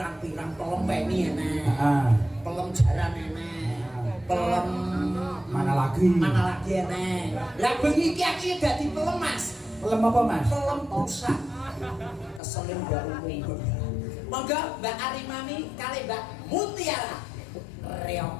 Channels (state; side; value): drops out; right; at 12.4 s